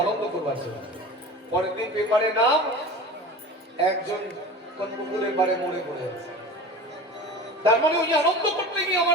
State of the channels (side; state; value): both; normal; correlation 0.34